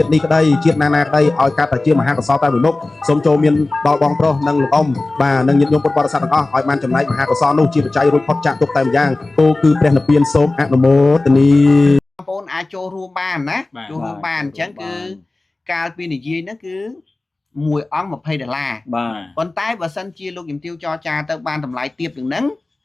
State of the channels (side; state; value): right; quieter; 3.1 dB